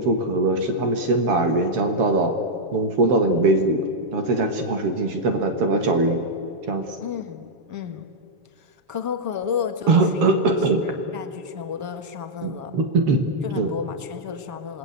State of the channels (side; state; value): left; late; 7.2 ms